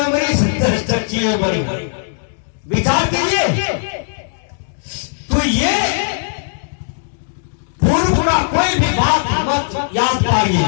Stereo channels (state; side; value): silent; right; digital silence